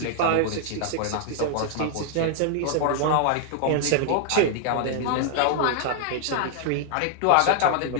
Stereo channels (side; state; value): both; different; correlation 0.00